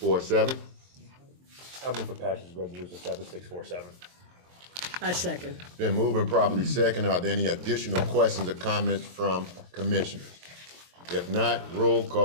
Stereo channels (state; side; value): late; left; 23 ms